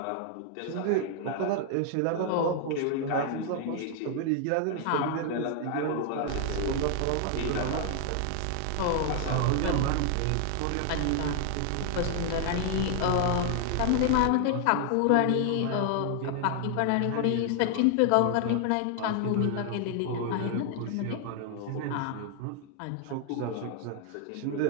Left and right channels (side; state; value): both; different; correlation 0.00